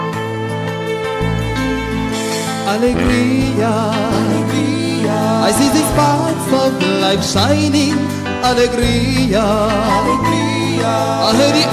Alegria, alegria, I see the sparks of life shining. Alegria, alegria, I hear the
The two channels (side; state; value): both; identical; correlation 1.00